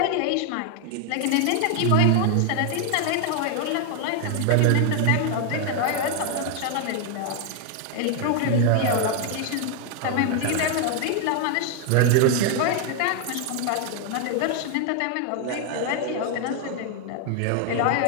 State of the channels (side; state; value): both; different; correlation 0.00